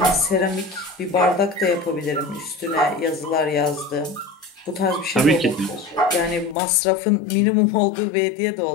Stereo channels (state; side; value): drops out; right; at 6.6 s